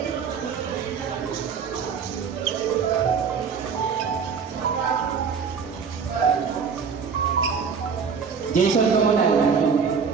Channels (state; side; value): quieter; left; 6.2 dB